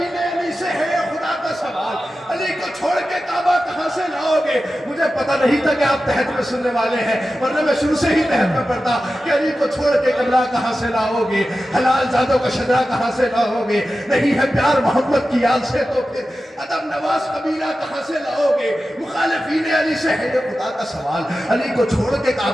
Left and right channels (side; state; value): both; normal; correlation 0.93